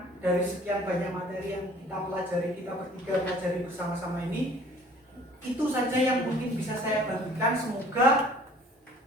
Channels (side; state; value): both; normal; correlation 0.52